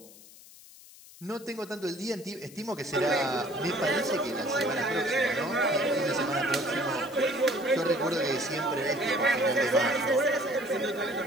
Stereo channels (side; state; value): left; noise; hiss, 21 dB below the sound